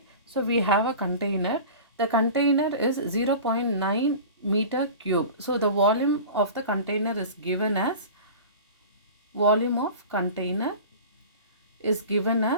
So we have a container. The container is 0.9 meter cube. So the volume of the container is given as volume of container is given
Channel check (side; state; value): both; inverted; correlation -0.37